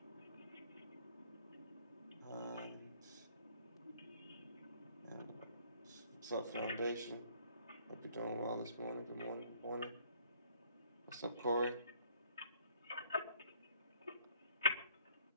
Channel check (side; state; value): both; inverted; correlation -0.62